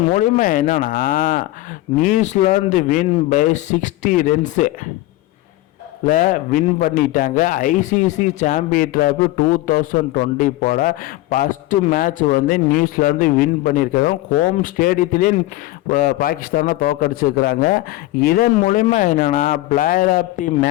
மூலிமா என்னன்னா New Zealand win by 60 runs win பண்ணிட்டாங்க. ஐசிசி சாம்பியன் டிராஃபி 2020 போட ஃபஸ்ட்டு மேட்ச் வந்து நியூசிலாந்து வின் பண்ணியிருக்காங்க. ஹோம் ஸ்டேடியத்திலே பாகிஸ்தானை தோக்கடிச்சிருக்கிறாங்க. இதன் மூலிமா என்னென்னா பிளேயர் ஆஃப் தி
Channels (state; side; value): quieter; right; 17.1 dB